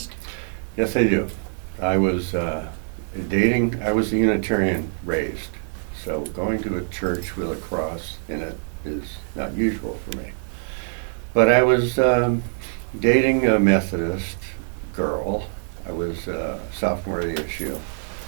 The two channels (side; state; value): left; silent; 63 dB below the other